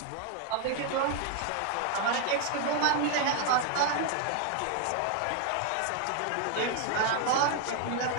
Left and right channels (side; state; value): both; different; correlation 0.00